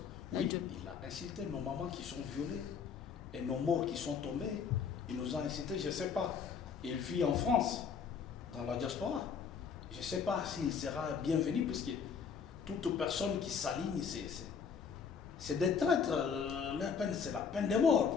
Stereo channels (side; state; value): right; quieter; 6.4 dB